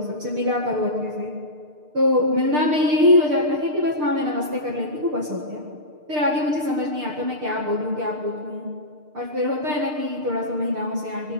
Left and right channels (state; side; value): late; left; 6.6 ms